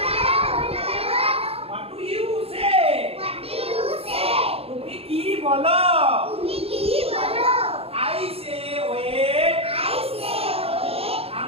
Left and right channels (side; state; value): left; late; 0.28 ms